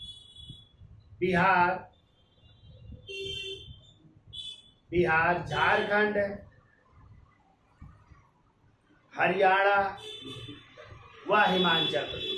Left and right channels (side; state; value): both; identical; correlation 1.00